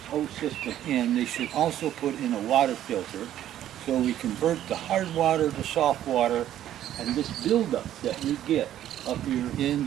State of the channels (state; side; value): quieter; left; 11.9 dB